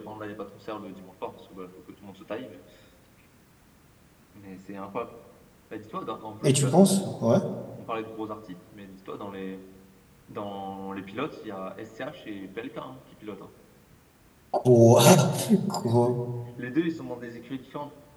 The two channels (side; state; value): both; identical; correlation 1.00